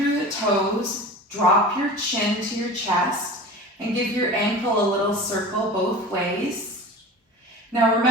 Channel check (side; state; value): both; normal; correlation 0.36